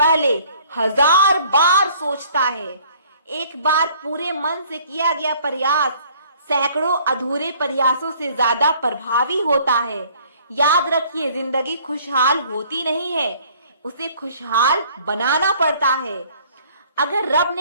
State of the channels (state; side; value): inverted; both; correlation -0.56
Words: 1000 बार सोचता है। एक बार पूरे मन से किया गया प्रयास सैकड़ों अधूरे प्रयासों से ज्यादा प्रभावी होता है। याद रखिए, जिंदगी खुशहाल होती नहीं है, उसे खुशहाल बनाना पड़ता है। अगर रब